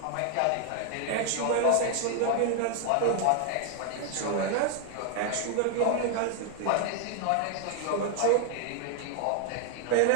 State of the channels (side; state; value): both; different; correlation 0.00